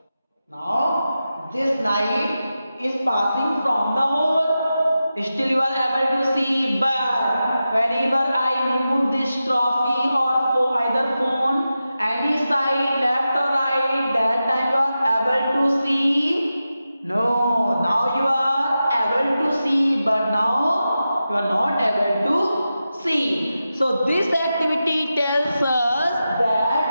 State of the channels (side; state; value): both; inverted; correlation -0.92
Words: Now this light is passing from the hole. Still you are able to see, but whenever I move this trophy or for either phone, any side, left or right, that time you are able to see. No, now you are able to see, but now you are not able to see. So this activity tells us